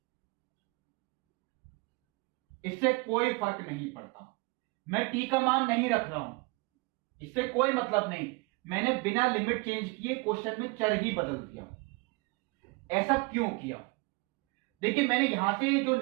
इससे कोई फर्क नहीं पड़ता, मैं t का मान नहीं रख रहा हूं, इससे कोई मतलब नहीं, मैंने बिना लिमिट चेंज किए क्वेश्चन में चर ही बदल दिया। ऐसा क्यों किया, देखिए मैंने यहां से जो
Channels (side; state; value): left; quieter; 27.5 dB